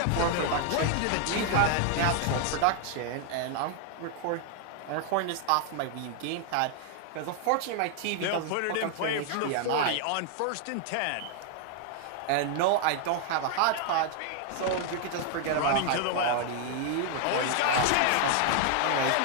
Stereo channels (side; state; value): both; different; correlation 0.00